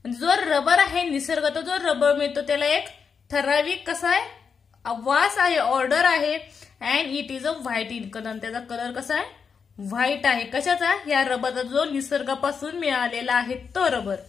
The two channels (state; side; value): quieter; right; 6.0 dB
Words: म्हणजे जो रबर आहे निसर्गात जो रबर मिळतो त्याला एक ठराविक कसा आहे? वास आहे, ऑर्डर आहे. And it is a white in colour. त्याचा कलर कसा आहे? व्हाईट आहे. कशाचा? या रबरचा जो निसर्गापासून मिळालेला आहे तो रबर.